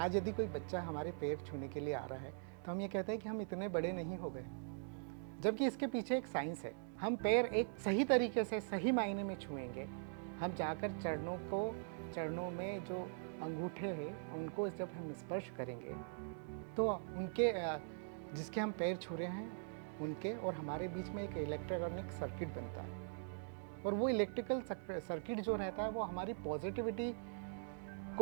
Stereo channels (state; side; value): silent; left; digital silence